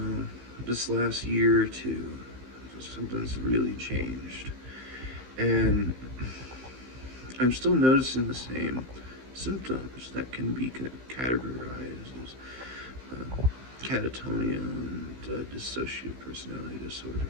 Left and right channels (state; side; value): late; left; 15 ms